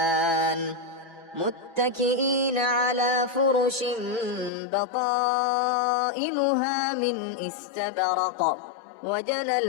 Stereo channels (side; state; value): right; drops out; at 4.5 s